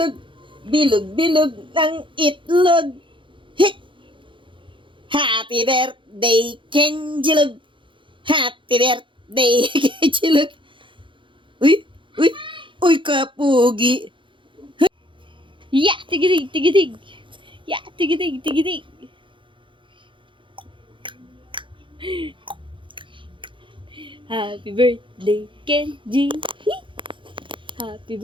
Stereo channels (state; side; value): late; left; 0.24 ms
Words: Bilog-bilog ng itlog! Hit! Happy birthday, Kenjilog! Happy birthday, Kenjilog! Uy! Uy! Uy, kapugi! Ya, tigidig, tigidig. Ya, tigidig, tigidig. Happy birthday, Kenji. Happy